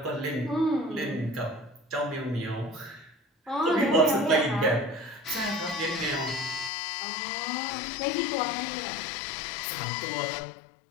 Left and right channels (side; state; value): right; drops out; at 6.7 s